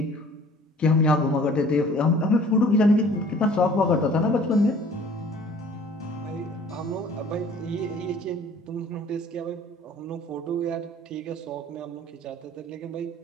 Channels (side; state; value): both; normal; correlation 0.51